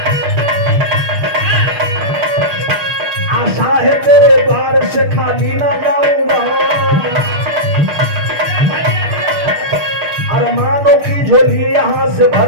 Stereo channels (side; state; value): left; late; 6.7 ms